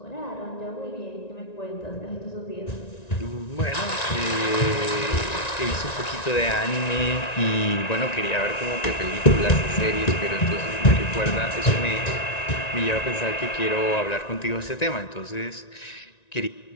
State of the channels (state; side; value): late; right; 1.9 ms